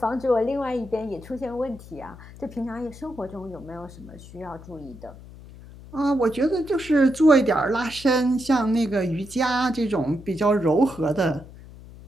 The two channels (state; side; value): noise; left; hum, 18 dB below the sound